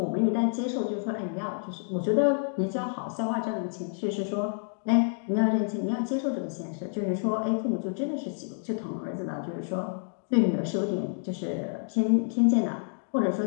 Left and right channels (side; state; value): right; silent; 59 dB below the other